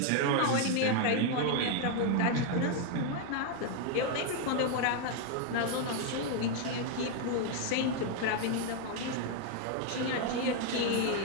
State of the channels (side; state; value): both; different; correlation 0.01